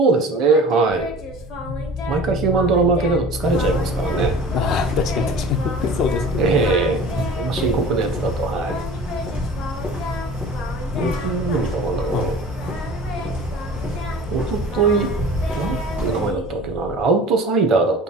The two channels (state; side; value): normal; both; correlation 0.42